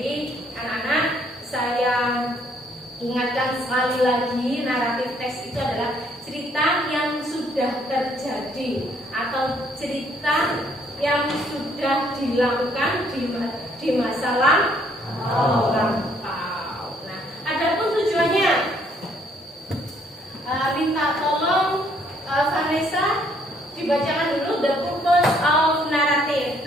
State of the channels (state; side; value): normal; both; correlation 0.66